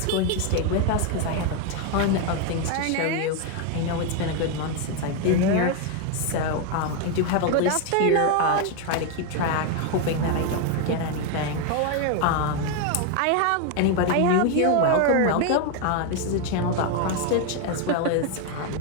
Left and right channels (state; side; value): different; both; correlation 0.01